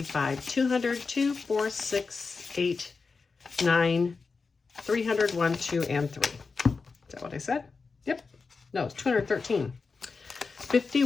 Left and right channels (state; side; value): quieter; right; 4.6 dB